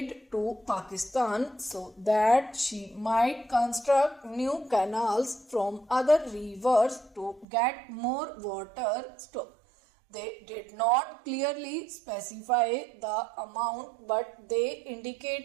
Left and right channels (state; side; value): drops out; left; at 7.5 s